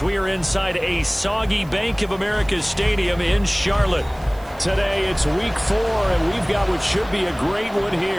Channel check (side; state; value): right; noise; hiss, 25 dB below the sound